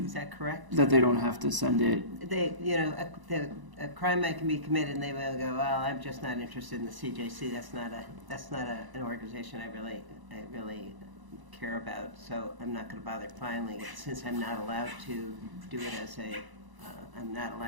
Is that correct? That they don't have to send it. They, you know, a crime might can be committed, and they will go, well, I'm just not interested in the CJC. That's not an organization I really care about. So I'm not going to bother filing it, since I'm not allowed to do it as I'm not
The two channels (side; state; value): left; late; 1.0 ms